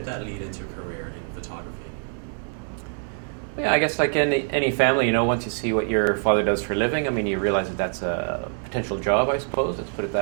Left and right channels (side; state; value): left; silent; 58 dB below the other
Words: that lead into a career in photography? Yeah, I guess like any family, once you see what your father does for a living, you realize that that's a potential job, I suppose. Let's put it